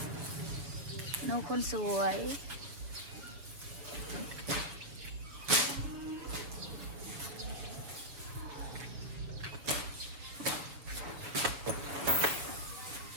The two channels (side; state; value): left; late; 7.3 ms